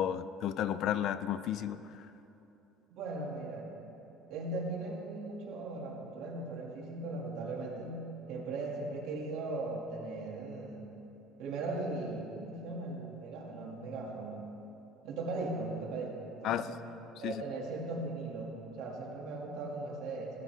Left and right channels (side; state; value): both; normal; correlation 0.40